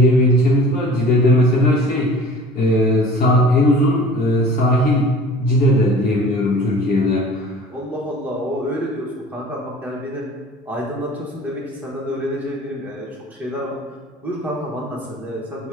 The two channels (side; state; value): both; normal; correlation 0.44